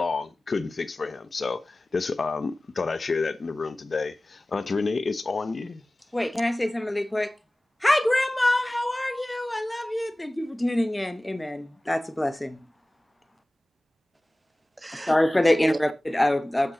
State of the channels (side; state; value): both; normal; correlation 0.98